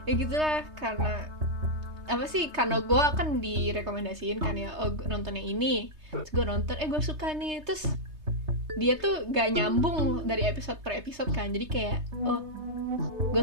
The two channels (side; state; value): left; late; 3.3 ms